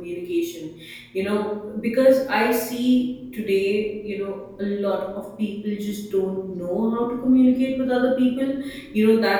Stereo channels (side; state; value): both; identical; correlation 1.00